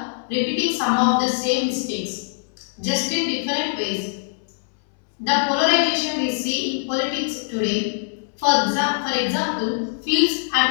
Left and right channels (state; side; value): silent; right; 64 dB below the other